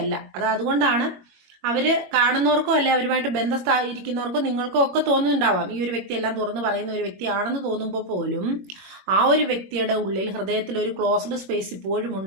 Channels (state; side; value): late; left; 22 ms